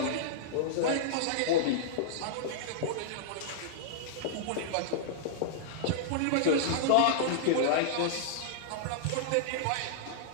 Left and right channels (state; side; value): different; both; correlation -0.02